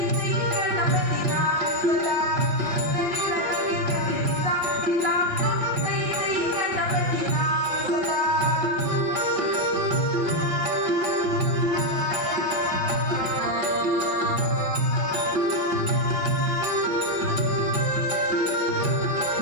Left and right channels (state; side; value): late; left; 5.3 ms